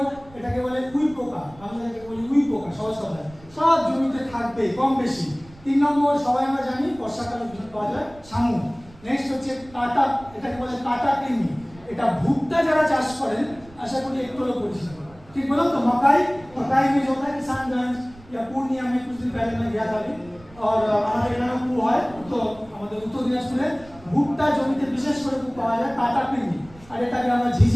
এটাকে বলে উই পোকা, আমরা এটাকে বলি উই পোকা, সহজ কথায় সব জমিতে থাকবে কম বেশি। 3 নম্বর সবাই আমরা জানি বর্ষাকালে পাওয়া যায় শামুক। নেক্সট হচ্ছে কাটা, এটাকে বলে কাটা কৃমি। এটা ভুট্টা যারা চাষ করেন আশা করি একটু হলেও পরিচিত, ठीक बोला तो मकाई, मकाई में जो होता है किसानगंज या पूर्णिया में कुछ दिन पहले मैं गया था अभी, और हमारे এখানে কু হয়, তো আমাদের উত্তর দিনাজপুরে ভুট্টা জমিতে বিশেষ করে কু পাওয়া যায় কাটা কৃমি, আর এটাকে আমরা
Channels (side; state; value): right; noise; rumble, 23 dB below the sound